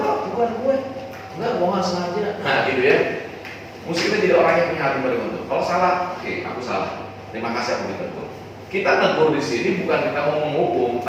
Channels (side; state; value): both; identical; correlation 1.00